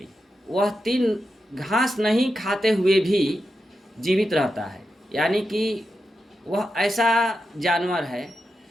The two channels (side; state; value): both; normal; correlation 0.88